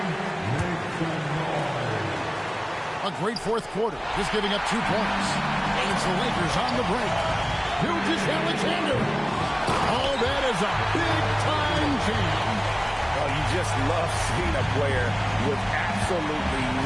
A great fourth quarter, just giving up 2 points. And it's the Lakers on the break. Gilgeous-Alexander. Oh, that is a big-time jam. Oh, you just love seeing a player with absolutely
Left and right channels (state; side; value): identical; both; correlation 1.00